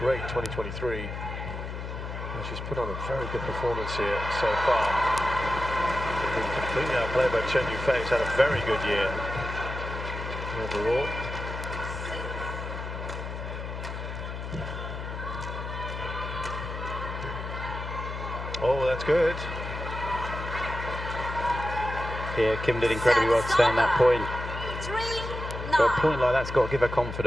2023, and she's put on a very good performance here so far. Been completely outplayed by Chen Yu Fei, who's had a very good year overall. Oh, that's good. Yeah, Kim did incredibly well to stay on that point. But a point like that's got to give her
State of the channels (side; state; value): left; noise; hum, 7 dB below the sound